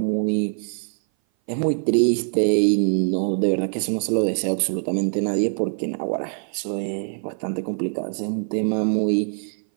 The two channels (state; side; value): silent; left; 58 dB below the other